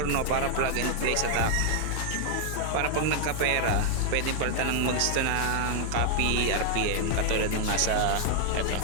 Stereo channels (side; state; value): both; different; correlation 0.00